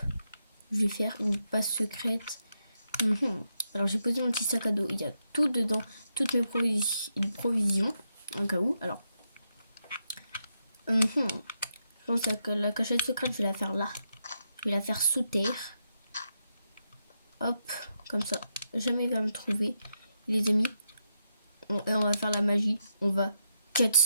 je vais faire une passe secrète. Alors j'ai posé mon petit sac à dos, il y a tout dedans, toutes mes provisions, en cas où. Alors, je pense que la cachette secrète, je vais la faire là. Je vais la faire sous terre. Hop, comme ça, jamais il va me trouver. Les amis, et on va faire la magie. On va cut.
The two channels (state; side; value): inverted; both; correlation -0.83